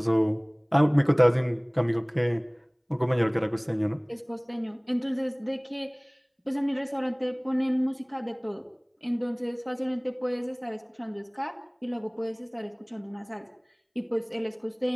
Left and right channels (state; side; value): identical; both; correlation 1.00